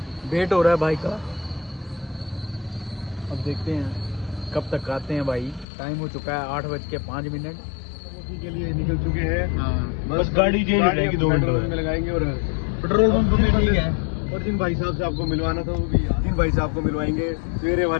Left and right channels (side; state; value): right; drops out; at 5.7 s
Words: वेट हो रहा है भाई का। अब देखते हैं कब तक आते हैं भाई। टाइम हो चुका है 8:05। के लिए निकल चुके हैं। हाँ, बस गाड़ी चेंज हो जाएगी 2 घंटे में लगाएंगे। और पेट्रोल पंप भी ठीक है। और जिन भाई साहब से आपको मिलवाना था वो भी जिन भाई साहब को मिलवाएंगे सवेरे